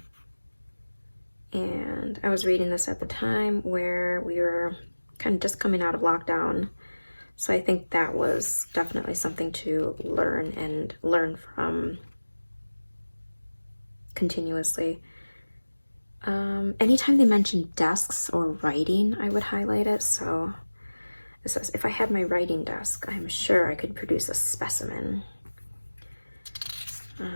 And I was reading this at the time where we were kind of just coming out of lockdown. So I think that was definitely something to learn and learn from continuously. Anytime they mentioned desks or writing, I would highlight it. So it says, if I had my writing desk, I'm sure I could produce a specimen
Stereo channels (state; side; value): inverted; both; correlation -1.00